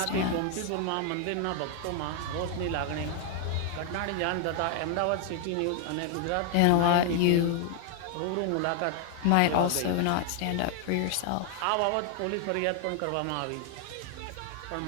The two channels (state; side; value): different; both; correlation 0.00